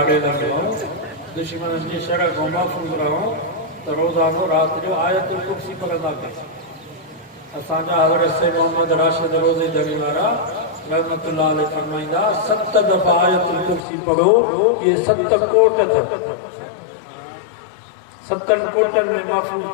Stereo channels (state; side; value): drops out; right; at 13.8 s